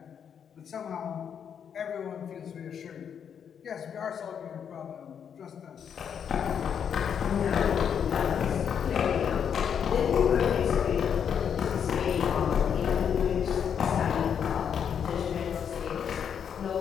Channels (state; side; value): quieter; right; 7.9 dB